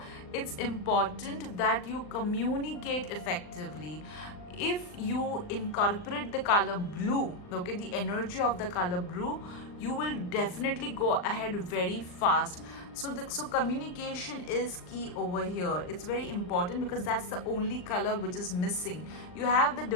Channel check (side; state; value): right; late; 39 ms